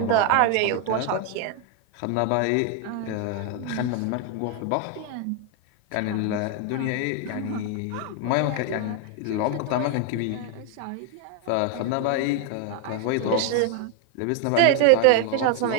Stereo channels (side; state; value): both; different; correlation 0.01